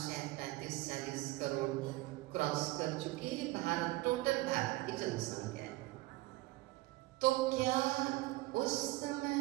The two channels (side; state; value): left; quieter; 19.8 dB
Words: 35-40 करोड़ क्रॉस कर चुकी है भारत, टोटल भारत की जनसंख्या है। तो क्या उस समय